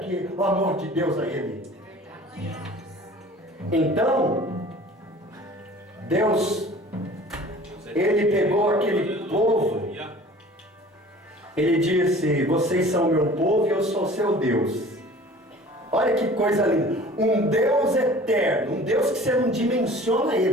o amor de Deus a Ele. Então, Deus, Ele pegou aquele povo, Ele disse: vocês são meu povo e eu sou seu Deus. Olha que coisa linda, um Deus eterno, um Deus que você não dimensiona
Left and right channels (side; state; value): both; normal; correlation 0.45